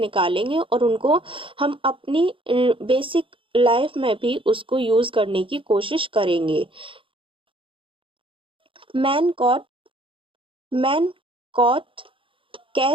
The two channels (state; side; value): late; left; 0.25 ms